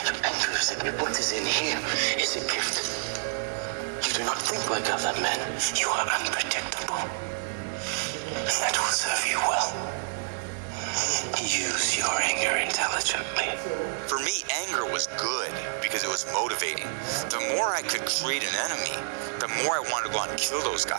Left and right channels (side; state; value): left; silent; digital silence